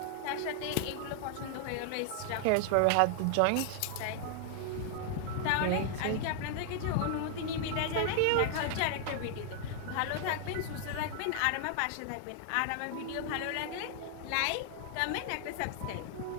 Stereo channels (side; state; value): both; different; correlation 0.00